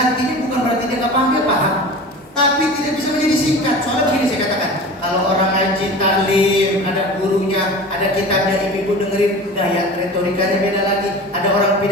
bukan berarti dia nggak paham, dia paham, tapi tidak bisa menjadi singkat. Soalnya begini saya katakan, kalau orang ngaji taklim, ada gurunya, ada kitabnya, ibu-ibu dengerin, gaya retorikanya beda lagi. Ada orang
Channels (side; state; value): both; normal; correlation 0.35